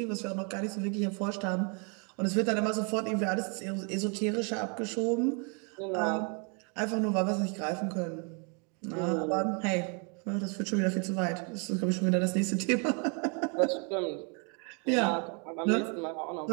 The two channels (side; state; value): left; quieter; 35.7 dB